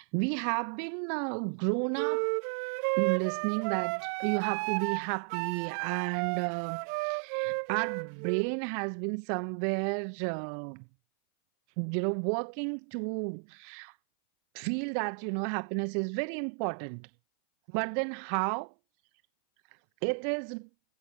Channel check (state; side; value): silent; left; 56 dB below the other